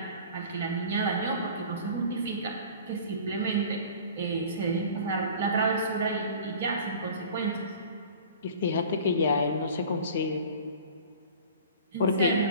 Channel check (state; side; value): inverted; both; correlation -0.42